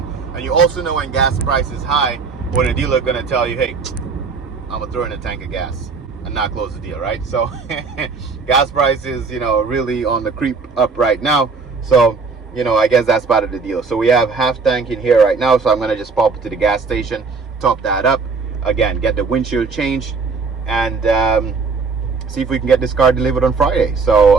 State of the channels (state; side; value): quieter; left; 4.7 dB